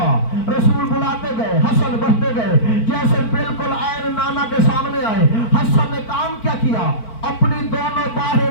رسول بلاتے گئے، حسن بڑھتے گئے، جیسے بالکل عین نانا کے سامنے آئے۔ حسن نے کام کیا کیا؟ اپنی دونوں باہیں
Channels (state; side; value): late; right; 4.5 ms